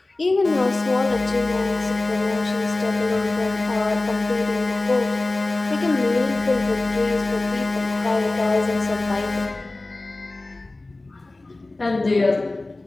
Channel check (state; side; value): quieter; right; 3.0 dB